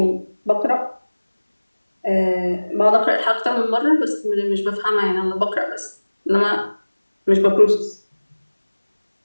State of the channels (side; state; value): both; inverted; correlation -1.00